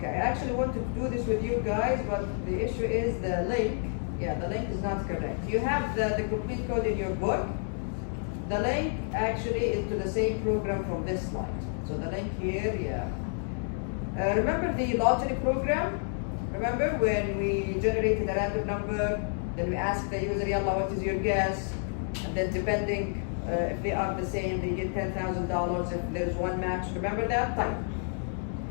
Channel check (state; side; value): silent; right; 58 dB below the other